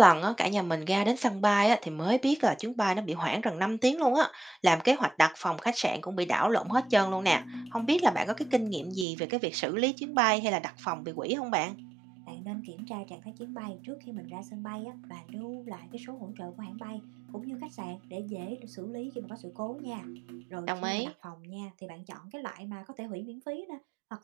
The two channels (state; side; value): drops out; left; at 9.1 s